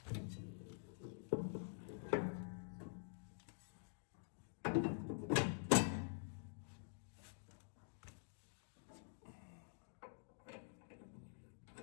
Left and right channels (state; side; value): silent; right; digital silence